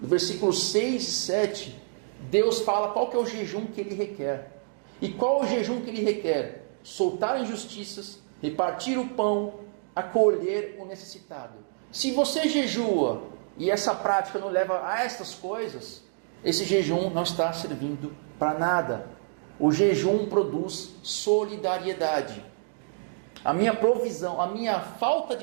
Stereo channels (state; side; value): silent; left; digital silence